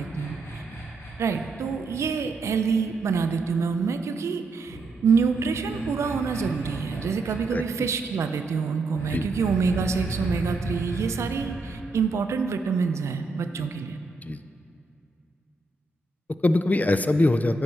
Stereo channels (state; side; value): quieter; left; 3.0 dB